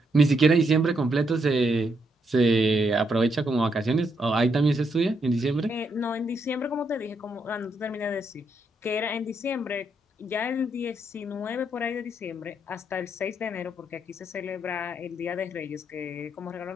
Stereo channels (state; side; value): normal; both; correlation 0.77